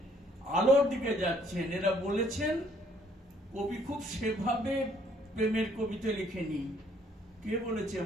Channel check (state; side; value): normal; both; correlation 0.64